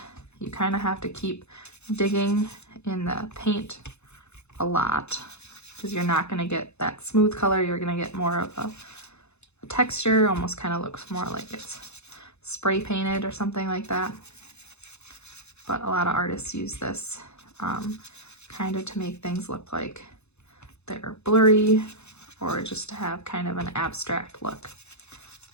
You kind of have to keep digging in the paint a lot because you're not going to get that smooth color. You're going to get more of a texture, almost kind of looks more like it's spray painted or something like that. But a lot of artists use this kind of to make things look like they're blurry or just to have kind of an abstract look.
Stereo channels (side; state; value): right; late; 0.81 ms